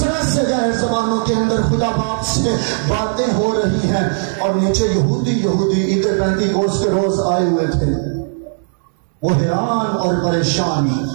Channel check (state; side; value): silent; left; digital silence